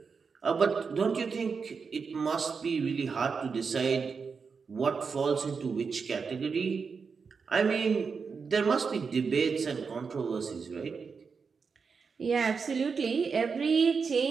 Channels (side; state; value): left; quieter; 5.4 dB